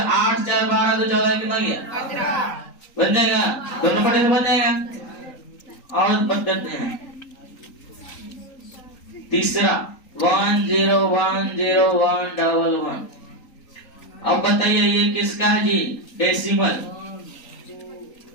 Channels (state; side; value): late; right; 3.8 ms